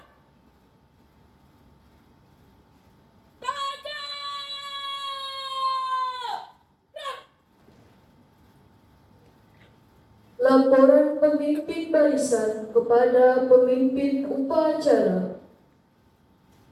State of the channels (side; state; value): both; identical; correlation 1.00